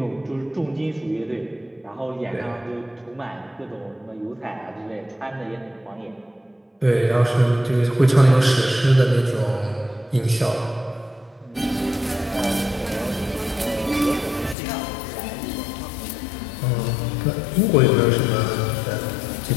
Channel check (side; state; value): right; drops out; at 14.6 s